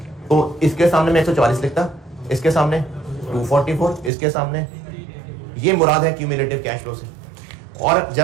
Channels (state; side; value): drops out; left; at 4.1 s